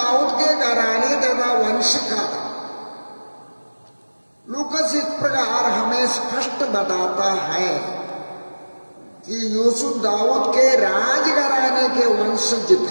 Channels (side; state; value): both; inverted; correlation -1.00